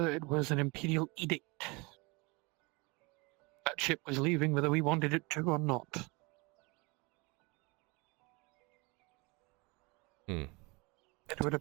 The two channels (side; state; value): left; quieter; 27.0 dB